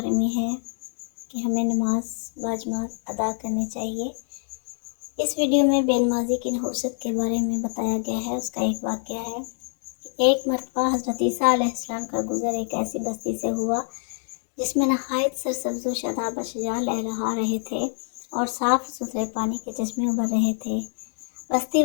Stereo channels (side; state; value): right; silent; 55 dB below the other